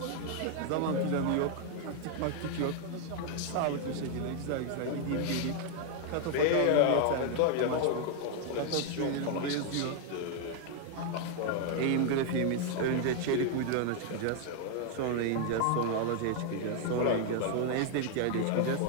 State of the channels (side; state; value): both; different; correlation 0.00